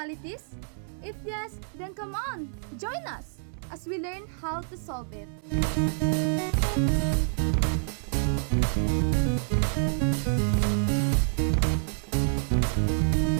If yes, then come on, join us as we learn how to solve it.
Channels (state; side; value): silent; left; digital silence